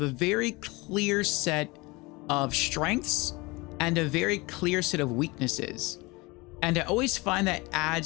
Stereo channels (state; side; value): quieter; right; 24.3 dB